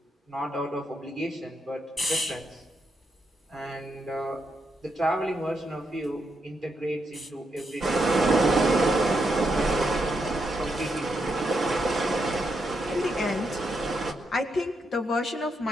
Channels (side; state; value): both; normal; correlation 0.81